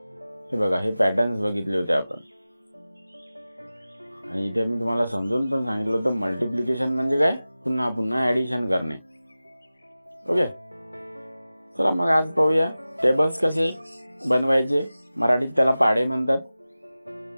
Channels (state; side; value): inverted; both; correlation -0.96